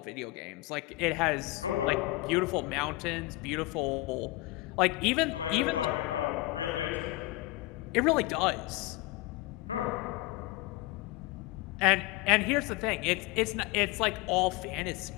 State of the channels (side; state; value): right; quieter; 19.4 dB